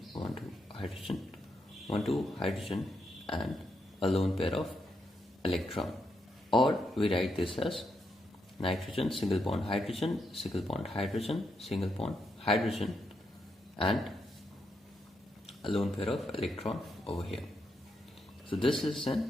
1 2 hydrogen 1 2 hydrogen and a lone pair of electron. Or we write this as nitrogen, single bond hydrogen, single bond hydrogen, single bond hydrogen, and a lone pair of electron over here. So this is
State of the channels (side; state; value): both; normal; correlation 0.81